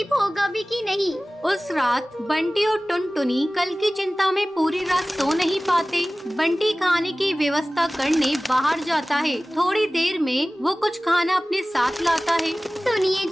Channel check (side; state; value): both; normal; correlation 0.97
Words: होगा भी कि नहीं। उस रात बंटी और टुनटुनी कल की चिंता में पूरी रात सो नहीं पाते। बंटी खाने की व्यवस्था करने बाहर जाता है। थोड़ी देर में वो कुछ खाना अपने साथ लाता है। सुनिए